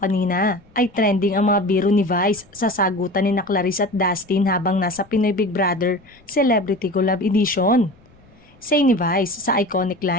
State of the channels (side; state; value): left; noise; rumble, 29 dB below the sound